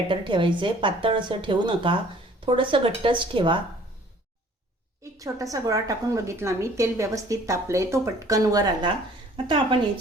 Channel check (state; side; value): normal; both; correlation 0.54